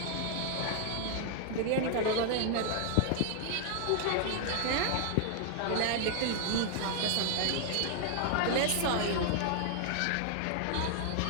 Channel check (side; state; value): both; different; correlation 0.00